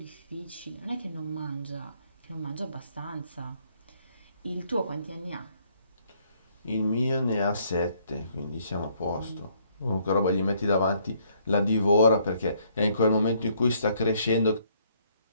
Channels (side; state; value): both; inverted; correlation -0.67